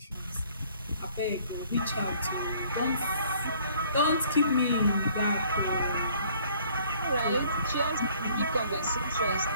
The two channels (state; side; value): inverted; both; correlation -0.59